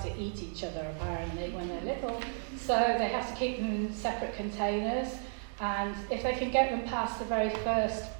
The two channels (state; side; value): silent; left; 56 dB below the other